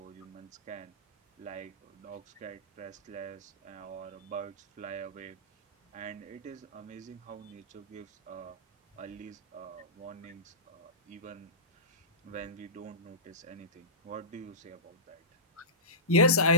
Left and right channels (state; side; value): normal; both; correlation -0.19